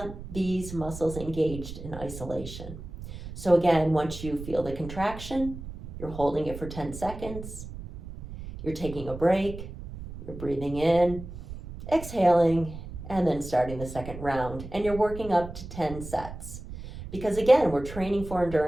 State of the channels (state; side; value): noise; right; rumble, 11 dB below the sound